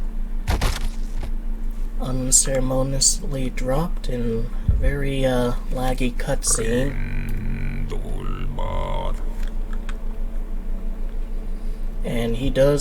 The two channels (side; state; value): both; identical; correlation 1.00